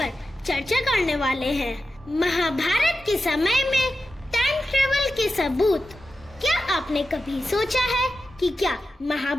चर्चा करने वाले हैं। महाभारत के समय में टाइम ट्रेवल के सबूत। क्या आपने कभी सोचा है कि क्या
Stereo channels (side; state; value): both; normal; correlation 0.92